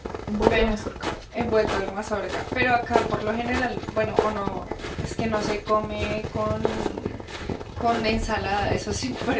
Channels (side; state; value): both; identical; correlation 1.00